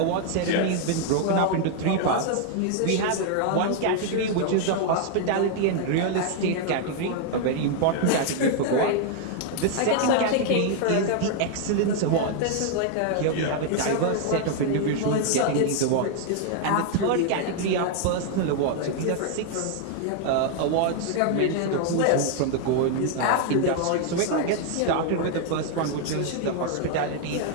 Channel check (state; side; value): different; both; correlation 0.00